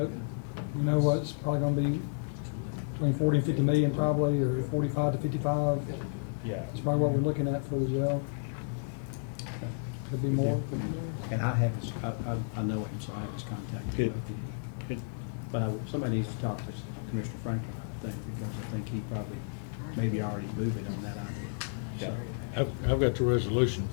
we know what's probably going to be between 40 and 50 million probably, or 45 to 55. Yeah. That's probably what we're looking at for the jail. Could be more. And I have his, I know him, so I have his contact. Good. But somebody needs to talk to Commissioner Franklin, I think, because I think he probably maybe already moved it on that idea. So, I've got the resolution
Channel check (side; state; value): right; silent; digital silence